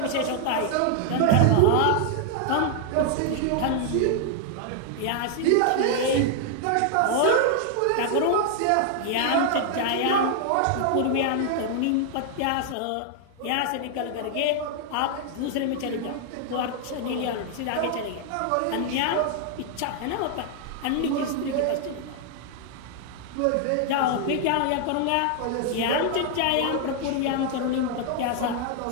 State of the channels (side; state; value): both; different; correlation 0.00